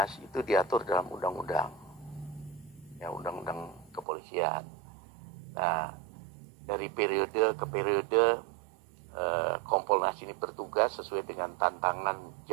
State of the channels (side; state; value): left; drops out; at 4.0 s